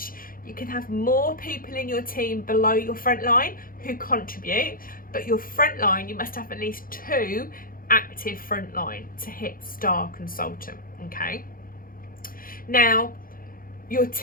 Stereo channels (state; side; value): late; right; 0.41 ms